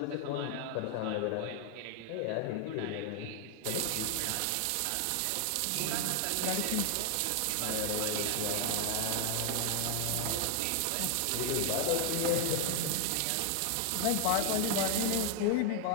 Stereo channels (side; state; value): both; different; correlation 0.00